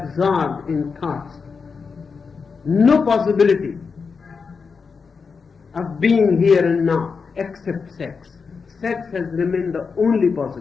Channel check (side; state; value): right; quieter; 5.3 dB